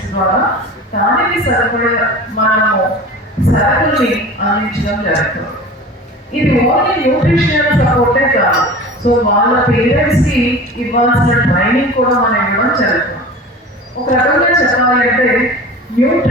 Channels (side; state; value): both; normal; correlation 0.37